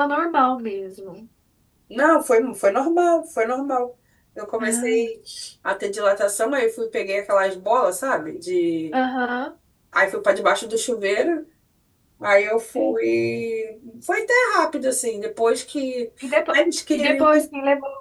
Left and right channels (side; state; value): both; identical; correlation 1.00